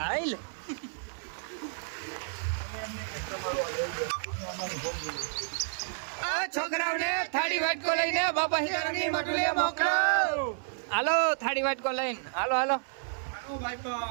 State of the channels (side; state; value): left; silent; 57 dB below the other